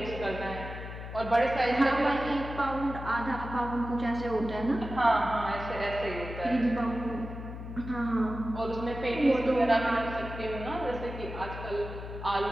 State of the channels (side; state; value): left; noise; hum, 9 dB below the sound